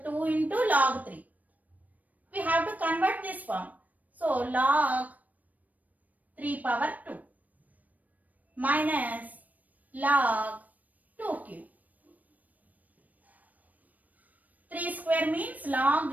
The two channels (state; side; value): late; left; 0.077 ms